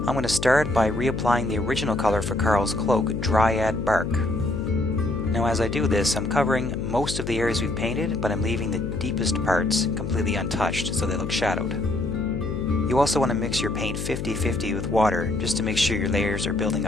I'm going to start by reapplying the original color for Karl's cloak, Dryad Bark. Now as I do this, I'm covering most of the areas we've painted, but I'm leaving the deepest parts completely untouched so they look shadowed. You also want to mix your paint 50-50 with water just to make sure your layers are building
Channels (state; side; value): noise; left; hum, 5 dB below the sound